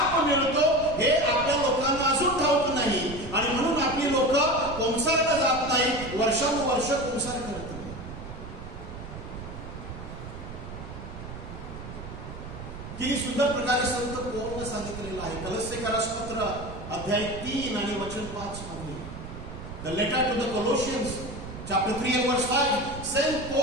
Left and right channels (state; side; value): noise; right; rumble, 11 dB below the sound